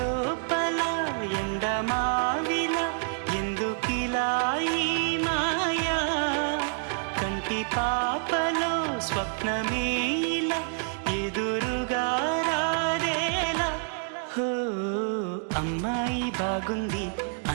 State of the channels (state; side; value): silent; left; 60 dB below the other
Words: ఎండమావిలా ఎందుకిలా ఈ మాయా కంటి పాపలో స్వప్నమే ఇలా ఎదురుగా రాదేలా హో అమ్మాయి బాగుంది